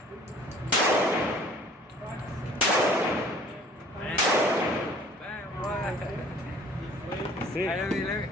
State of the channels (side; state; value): both; normal; correlation 0.52